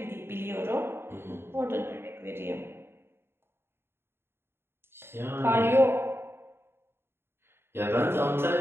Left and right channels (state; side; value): late; left; 0.11 ms